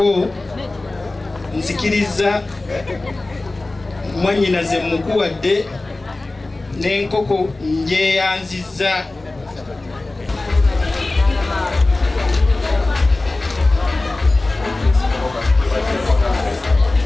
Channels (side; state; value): right; quieter; 3.1 dB